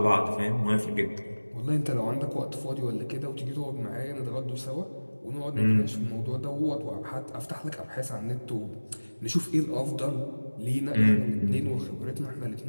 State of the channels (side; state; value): both; inverted; correlation -1.00